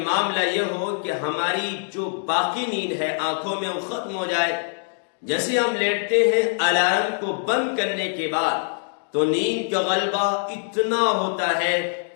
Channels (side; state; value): right; silent; digital silence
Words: معاملہ یہ ہو کہ ہماری جو باقی نیند ہے آنکھوں میں وہ ختم ہو جائے۔ جیسے ہم لیٹتے ہیں الارم کو بند کرنے کے بعد تو نیند کا غلبہ اتنا ہوتا ہے